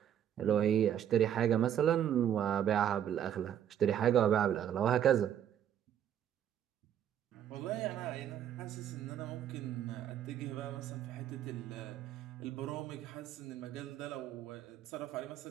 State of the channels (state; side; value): quieter; left; 10.1 dB